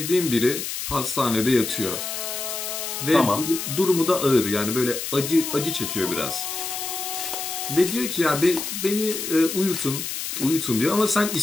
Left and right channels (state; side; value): noise; left; hiss, 5 dB below the sound